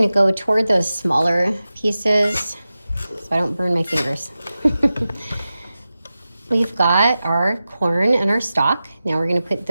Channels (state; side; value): inverted; both; correlation -0.94